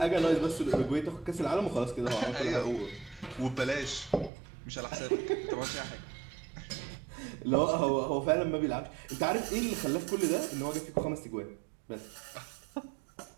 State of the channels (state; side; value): drops out; left; at 4.3 s